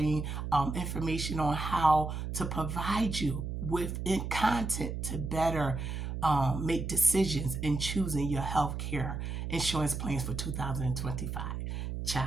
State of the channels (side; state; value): right; noise; hum, 4 dB below the sound